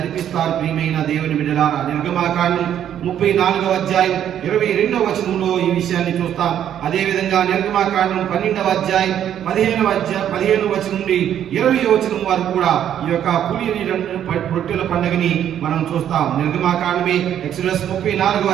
ప్రియమైన దేవుని బిడ్డలారా, నిర్గమాకాండం 34వ అధ్యాయం 22వ వచనంలో ఈ విషయాన్ని చూస్తాం. అదేవిధంగా నిర్గమాకాండం 12వ అధ్యాయం 15వ వచనం నుండి 20వ వచనం వరకు కూడా ఈ యొక్క పులిని రొట్టెల పండుగని మనం చూస్తాం. నిర్గమాకాండమే ఎక్సోడస్ 34వ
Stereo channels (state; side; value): quieter; left; 10.1 dB